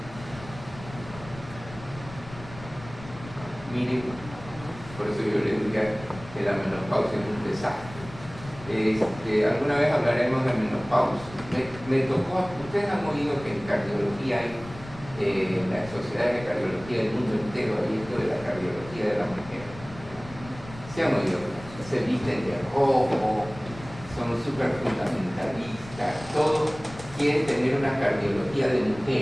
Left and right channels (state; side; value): noise; left; rumble, 16 dB below the sound